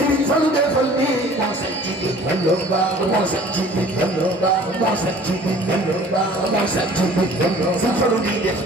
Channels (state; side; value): normal; both; correlation 0.49